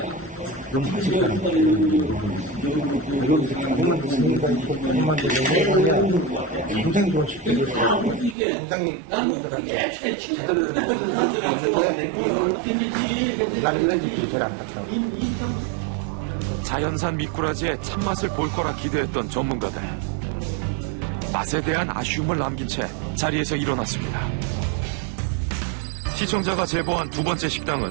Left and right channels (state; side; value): drops out; left; at 8.3 s